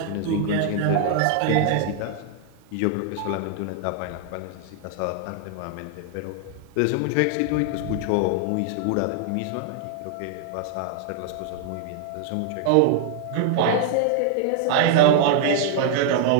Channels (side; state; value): both; different; correlation 0.00